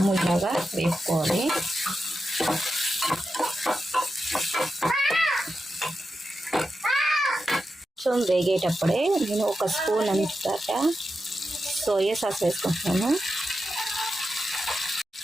ఇలాగా వేపుకోవాలి. కొంచెం వేగేటప్పుడే నేను ఒక స్పూన్ అంతటా సోయా సాస్ వేసుకుంటున్నాను.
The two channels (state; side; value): normal; both; correlation 0.89